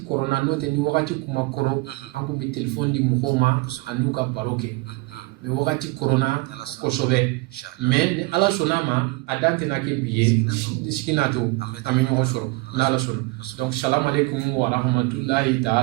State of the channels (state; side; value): quieter; left; 23.6 dB